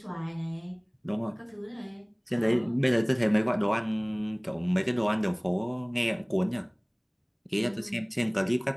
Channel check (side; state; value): both; identical; correlation 1.00